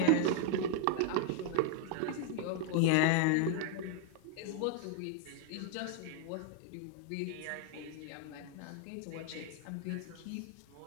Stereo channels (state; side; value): different; both; correlation 0.00